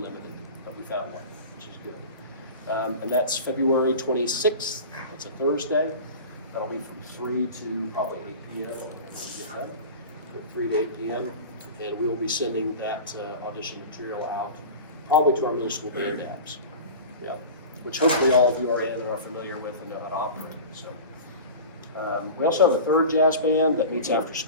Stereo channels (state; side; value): inverted; both; correlation -0.33